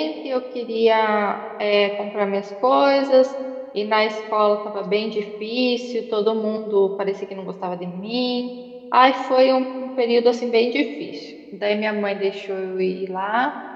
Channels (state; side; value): identical; both; correlation 1.00